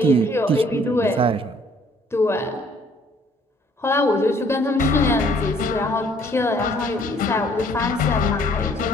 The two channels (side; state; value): both; normal; correlation 0.61